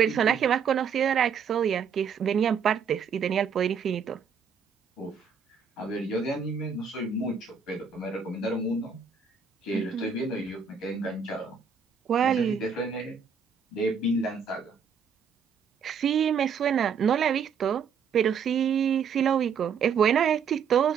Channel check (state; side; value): quieter; left; 6.5 dB